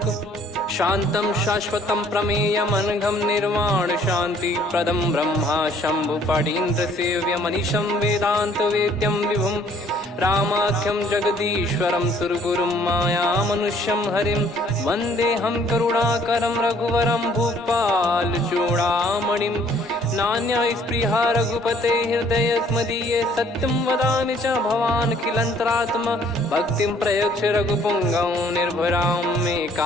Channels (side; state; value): both; normal; correlation 0.60